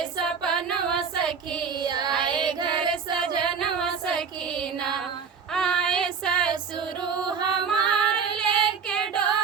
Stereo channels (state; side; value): quieter; left; 6.1 dB